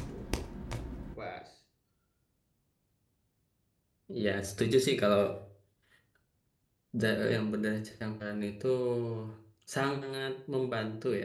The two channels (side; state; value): both; identical; correlation 1.00